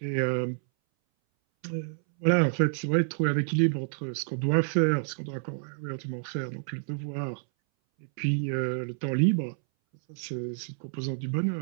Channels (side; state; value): left; silent; 59 dB below the other